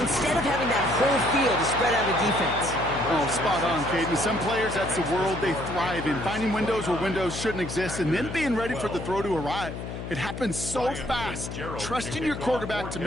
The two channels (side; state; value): left; noise; hum, 7 dB below the sound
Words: of having that whole field to spread out a defense. Oh, spot on, Caden. Some players, that's the world they thrive in. Finding windows where windows shouldn't exist and then being ready for the throw to arrive. It happens so fast. Trusting your quarterback to